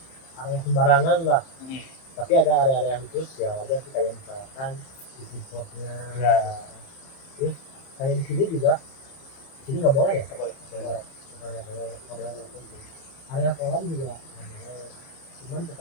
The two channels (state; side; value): late; right; 30 ms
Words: area sembarangan lah. Tapi ada area-area khusus ya wajar sih, kayak misalkan di foodcourtnya. Ya. Terus kayak di sini juga, di sini nggak boleh ya? Nggak boleh. Nggak boleh ngerokok di sini. Area kolam juga nggak boleh. Cuman